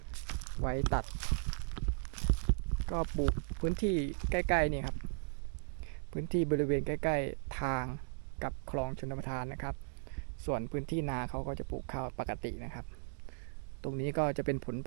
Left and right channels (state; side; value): silent; left; digital silence